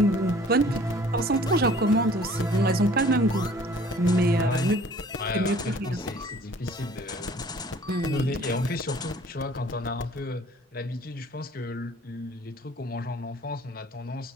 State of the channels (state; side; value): normal; both; correlation 0.52